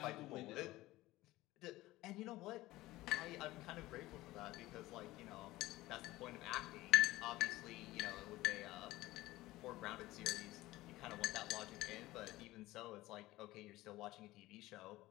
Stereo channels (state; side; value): quieter; right; 17.8 dB